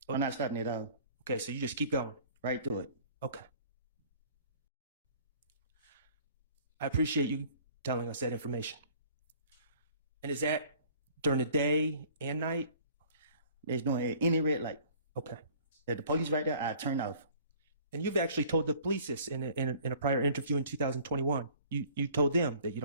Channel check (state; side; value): inverted; both; correlation -0.52